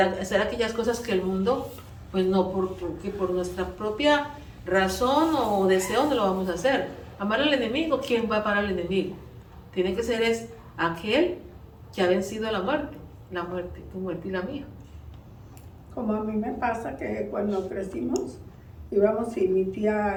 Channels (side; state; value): both; identical; correlation 1.00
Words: hacer aquellas cosas que el mundo, pues no, porque por nuestra propia razón o deseo no lo vamos a hacer. Amar al enemigo, ¿quién va a parar al enemigo? Tiene que ser aquel que ha vencido a la muerte, tu muerte y la mía. Como a mí me pasa que cuando crecimos, íbamos y mi